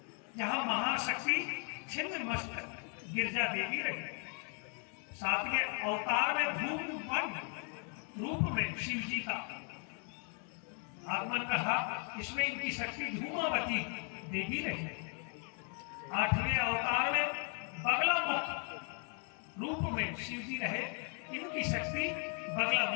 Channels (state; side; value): quieter; right; 39.3 dB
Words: यहाँ महाशक्ति छिन्नमस्तक गिरजा देवी रही। सातवें अवतार में धूम वन रूप में शिव जी का आगमन कहा, इसमें इनकी शक्ति धूमावती देवी रही। आठवें अवतार में बगलामुख रूप में शिव जी रहे, इनकी शक्ति